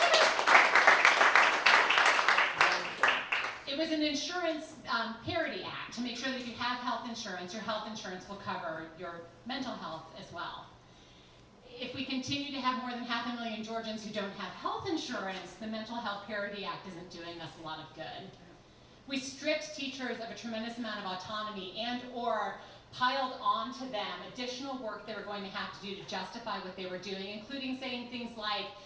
It was an insurance parity act to make sure that if you have health insurance, your health insurance will cover your mental health as well. If we continue to have more than 500,000 Georgians who don't have health insurance, the Mental Health Parity Act isn't doing us a lot of good. We stripped teachers of a tremendous amount of autonomy and or piled onto them additional work they were going to have to do to justify what they were doing, including saying things like,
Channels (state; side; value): identical; both; correlation 1.00